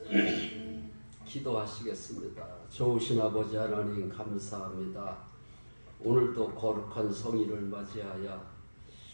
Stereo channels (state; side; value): inverted; both; correlation -1.00